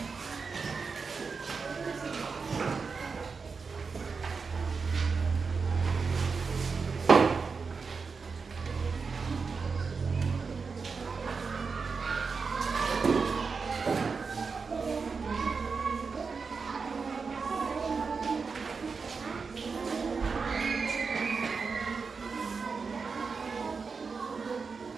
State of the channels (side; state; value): left; quieter; 5.0 dB